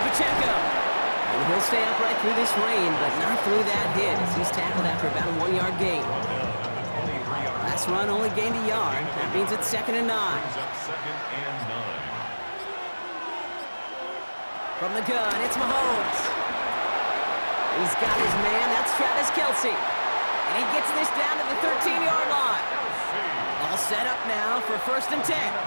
And he'll stay upright through this rain, but not through that hit as he's tackled after about a 1-yard gain. Last run only gained a yard. That means it's 2nd and 9. Brings up 2nd and 9. From the gun, it's Mahomes. He's got his man. That's Travis Kelce. And he gets this down to the 13-yard line. All set up now for 1st and 10. 10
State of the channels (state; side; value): inverted; both; correlation -1.00